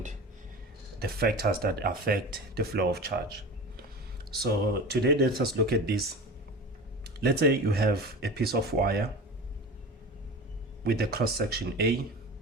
the factors that affect the flow of charge. So today let us look at this. Let's say you have a piece of wire with a cross section A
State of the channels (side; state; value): both; normal; correlation 0.32